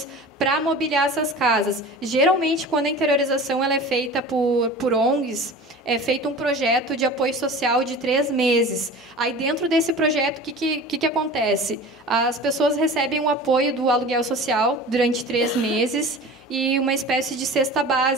para mobiliar essas casas. Geralmente, quando a interiorização ela é feita por ONGs, é feito um projeto de apoio social de 3 meses. Aí, dentro desse projeto, o que acontece? As pessoas recebem o apoio do aluguel social durante 3 meses e uma espécie de cesta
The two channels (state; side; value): normal; both; correlation 0.37